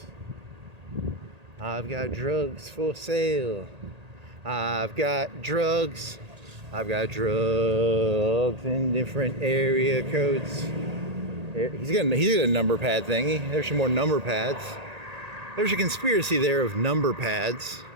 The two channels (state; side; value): late; left; 1.8 ms